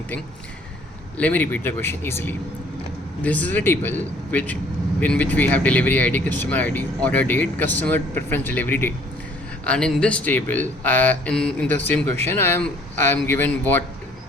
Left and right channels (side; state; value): both; normal; correlation 0.58